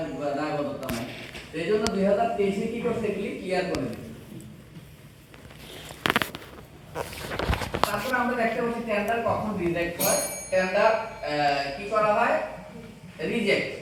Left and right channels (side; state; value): both; identical; correlation 1.00